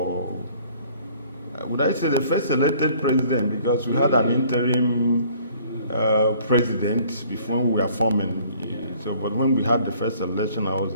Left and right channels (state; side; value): inverted; both; correlation -0.56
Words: would I say the first elected president, because we had an interim president before we were forming. So, but when we had the first election, I was